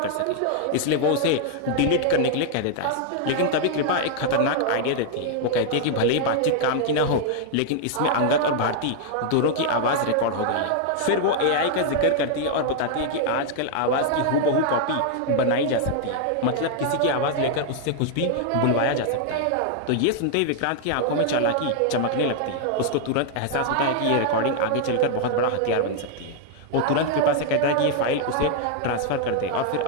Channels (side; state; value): both; different; correlation 0.00